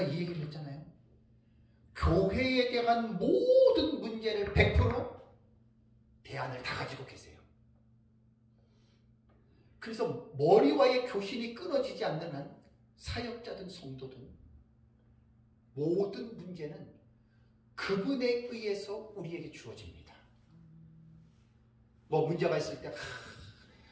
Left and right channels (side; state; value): both; identical; correlation 1.00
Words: 이 얘기를 했잖아요. 교회에 대한 모든 문제를 100% 대안을 다 가지고 계세요. 그래서 머리와의 교신이 끊어지지 않는 한 사역자든 성도든 모든 문제는 그분에 의해서 우리에게 주어집니다. 뭐 문제가 있을 때